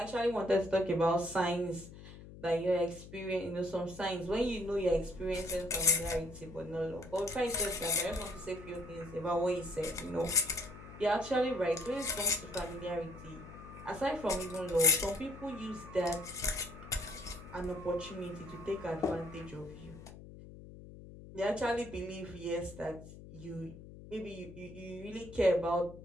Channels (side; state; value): left; noise; hum, 16 dB below the sound